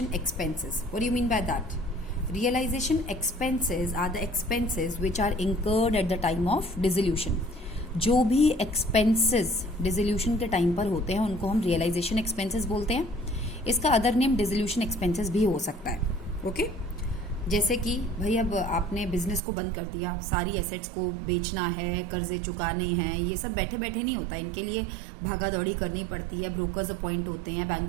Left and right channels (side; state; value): left; drops out; at 19.4 s